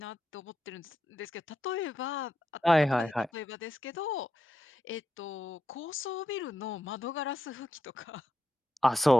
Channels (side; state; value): both; normal; correlation 0.85